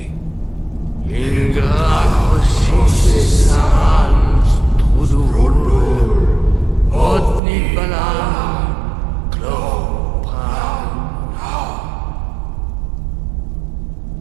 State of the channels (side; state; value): left; drops out; at 7.4 s